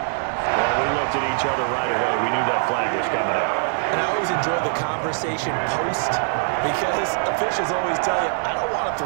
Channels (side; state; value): left; silent; 64 dB below the other